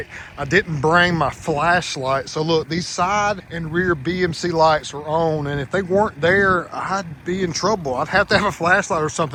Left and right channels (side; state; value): both; identical; correlation 1.00